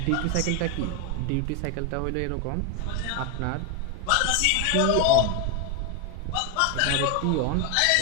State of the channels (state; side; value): different; both; correlation 0.01